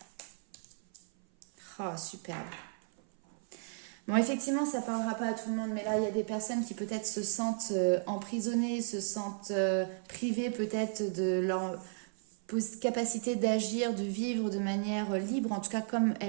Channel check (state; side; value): silent; left; 55 dB below the other